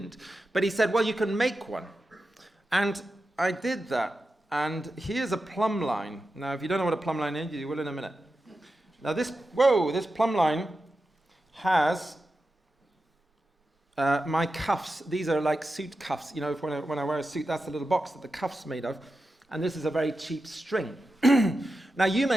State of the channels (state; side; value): normal; both; correlation 0.91